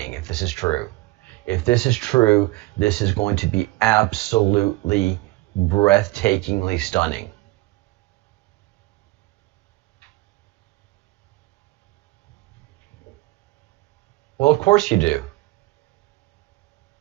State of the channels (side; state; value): left; quieter; 20.0 dB